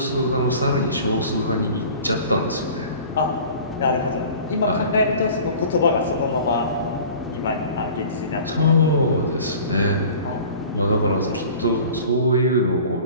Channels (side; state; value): both; inverted; correlation -0.44